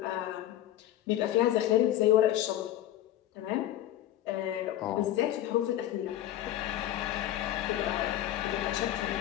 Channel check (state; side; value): quieter; right; 12.9 dB